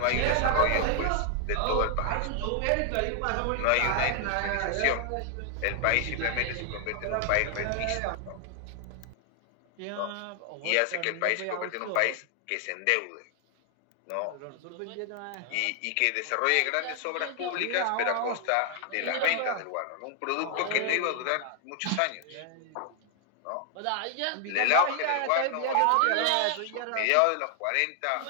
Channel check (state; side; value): different; both; correlation 0.00